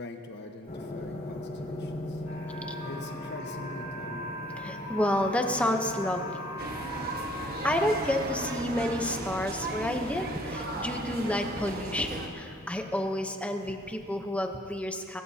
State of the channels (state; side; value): normal; both; correlation 0.61